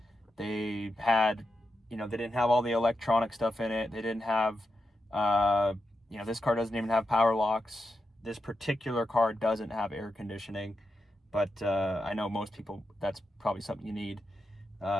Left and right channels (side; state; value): both; normal; correlation 0.87